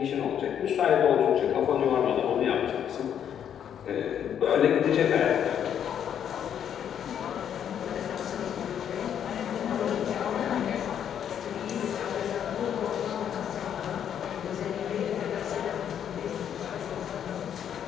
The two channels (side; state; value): right; quieter; 9.1 dB